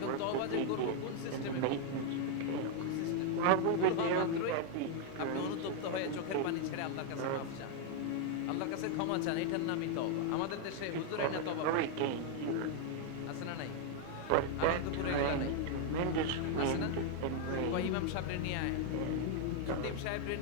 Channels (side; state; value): both; different; correlation 0.00